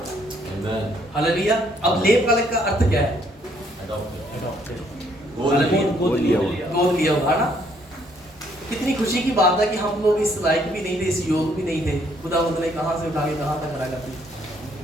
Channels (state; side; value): normal; both; correlation 0.67